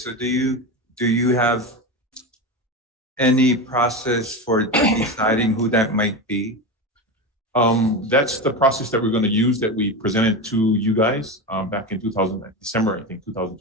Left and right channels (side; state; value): both; normal; correlation 0.20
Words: do you have any process for deciding who that might be? That's the process that we're going to use, that we presented to you guys back in December, I think,